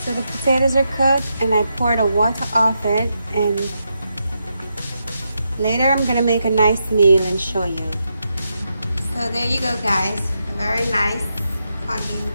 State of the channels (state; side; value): inverted; both; correlation -0.84